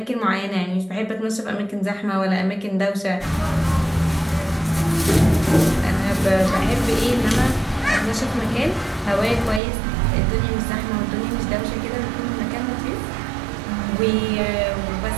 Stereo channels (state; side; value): drops out; left; at 9.6 s